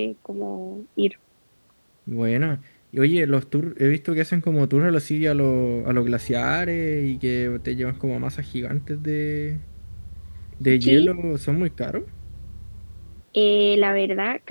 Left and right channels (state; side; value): inverted; both; correlation -1.00